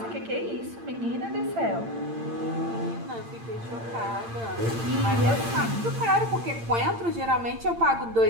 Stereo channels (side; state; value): left; late; 8.8 ms